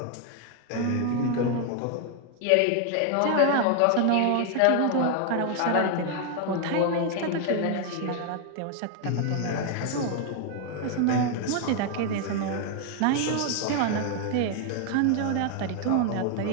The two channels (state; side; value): different; both; correlation 0.00